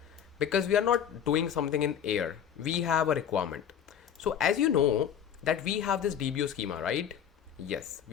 because we are not doing something in air. We have a requirement. So as you know that we have this DBO schema, right? Yes,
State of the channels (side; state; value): right; quieter; 8.9 dB